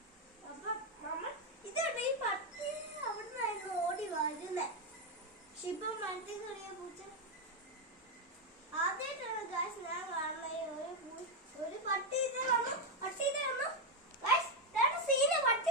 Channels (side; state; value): both; normal; correlation 0.04